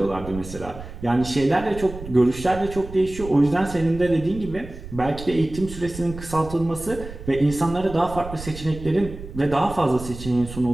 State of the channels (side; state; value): right; noise; rumble, 13 dB below the sound